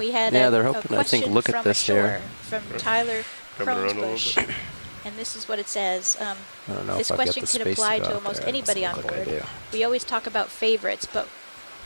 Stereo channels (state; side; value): inverted; both; correlation -1.00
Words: had Yeah, a, they're a hoping, I think, question look at from this ashore here. from Right. Tyler Coming around a little Kronesbush. bit. And this is what it says. I don't know This if I've got question the can space apply to, to go out almost there. It anybody doesn't on look like I board. do. We always talk about favorites, but